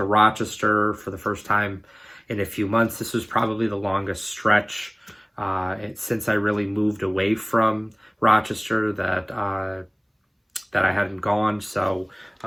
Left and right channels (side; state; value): both; identical; correlation 1.00